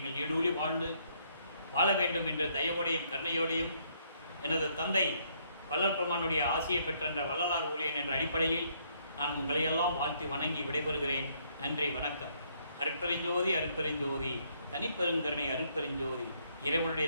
நீடூழி வாழ்ந்து வாழ வேண்டும் என்று தயவோடையும் கருணையோடையும் எனது தந்தை வல்லற்பெருமானுடைய ஆசையை பெற்ற வள்ளலார் ஊழியன் என்ற அடிப்படையில் நான் உங்களையெல்லாம் வாழ்த்தி வணங்கி விடைபெறுகிறேன். நன்றி, வணக்கம். அருட்பெருஞ்சோதி அருட்பெருஞ்சோதி தனிப்பெருங்கருணை அருட்பெருஞ்சோதி. இறைவனுடைய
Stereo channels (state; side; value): inverted; both; correlation -0.69